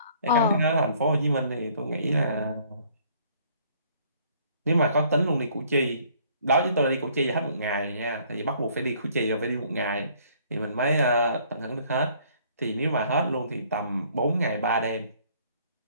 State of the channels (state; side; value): inverted; both; correlation -0.60